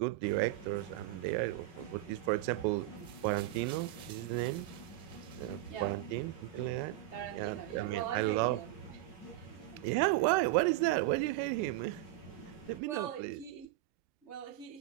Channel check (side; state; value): left; quieter; 16.6 dB